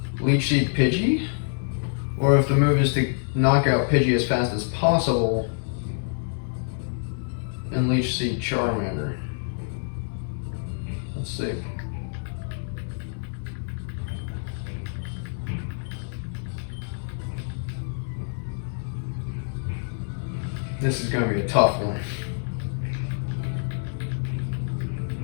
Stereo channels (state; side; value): silent; right; digital silence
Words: Leech Seed Pidgey, or if the move is to knock out Pidgey as fast as possible and Leech Seed Charmander. Let's see. This is going to be a tough one.